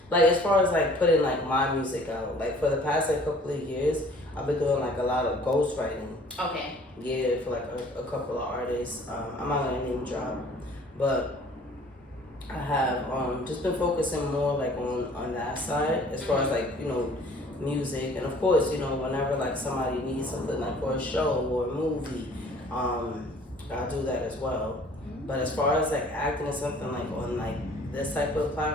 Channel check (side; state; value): both; normal; correlation 0.53